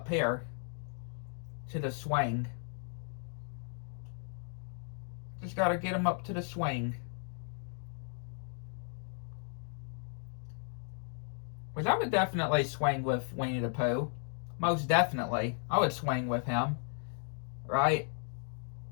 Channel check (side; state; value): right; silent; 54 dB below the other